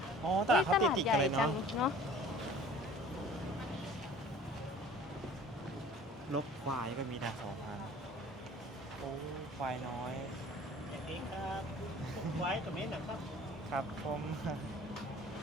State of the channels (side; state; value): both; normal; correlation 0.47